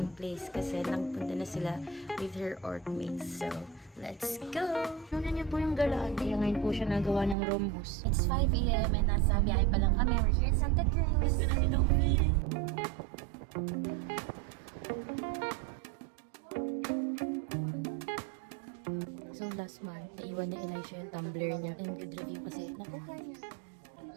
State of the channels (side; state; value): left; drops out; at 7.4 s